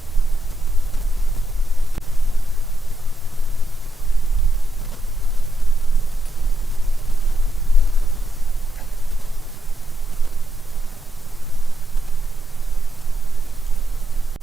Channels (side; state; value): both; normal; correlation 0.82